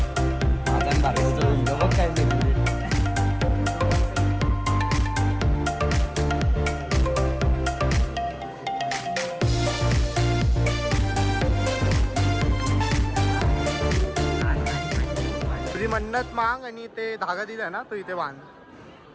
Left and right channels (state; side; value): identical; both; correlation 1.00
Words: तुझी मन्नत मांग आणि ते धागा दिला ना तो इथे बांध.